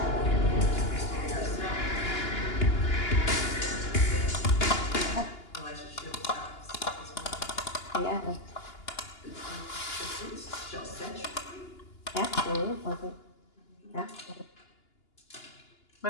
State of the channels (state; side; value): late; right; 2.8 ms